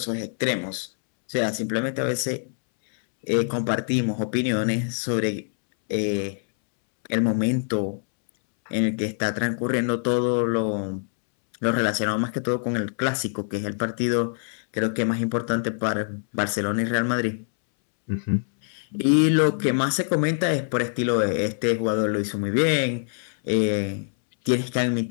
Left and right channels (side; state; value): right; silent; 62 dB below the other